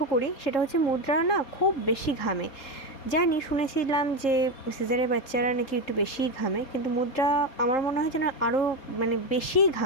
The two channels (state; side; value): late; right; 3.7 ms